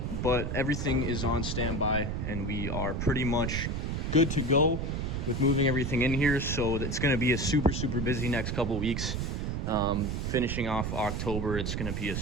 but everything is on standby, and we are pretty much good to go with moving everything in here. So it's going to be a super busy next couple weeks. Finishing off October, it's going to be a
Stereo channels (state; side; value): noise; right; rumble, 2 dB below the sound